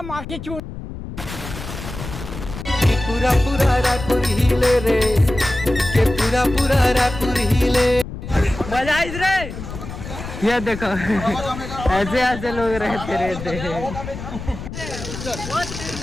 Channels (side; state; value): left; noise; rumble, 10 dB below the sound